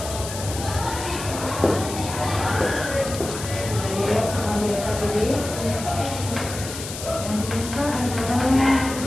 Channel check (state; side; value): noise; left; hiss, 9 dB below the sound